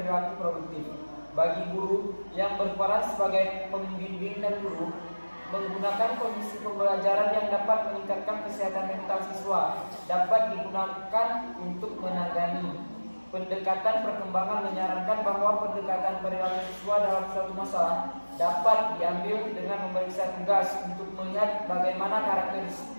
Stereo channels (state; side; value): inverted; both; correlation -1.00